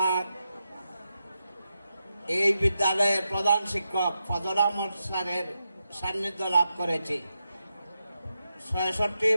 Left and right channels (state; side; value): inverted; both; correlation -0.88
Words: এই বিদ্যালয়ের প্রধান শিক্ষক ফজল আহমদ স্যারের সান্নিধ্য লাভ করেছি।